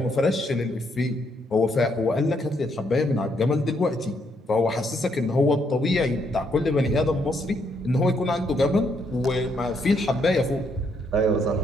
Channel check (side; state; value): both; normal; correlation 0.74